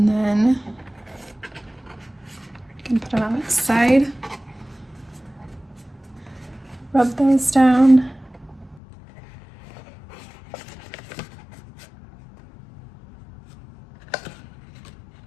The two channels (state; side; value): drops out; right; at 8.8 s